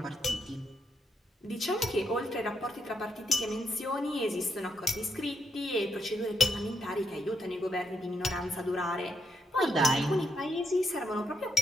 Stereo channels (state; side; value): normal; both; correlation 0.79